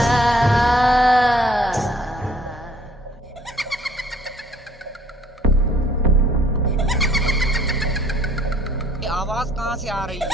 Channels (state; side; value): normal; both; correlation 0.59